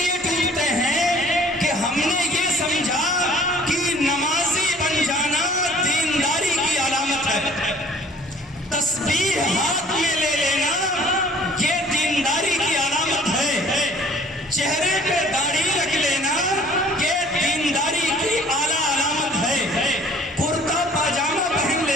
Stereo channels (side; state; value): both; normal; correlation 0.54